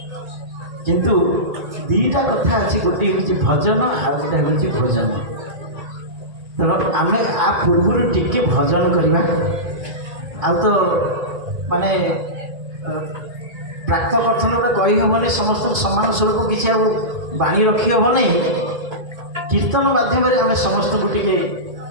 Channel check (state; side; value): late; left; 1.8 ms